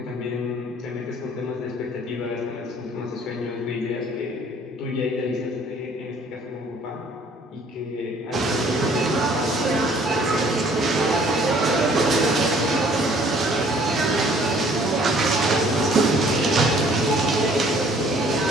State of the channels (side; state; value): both; normal; correlation 0.58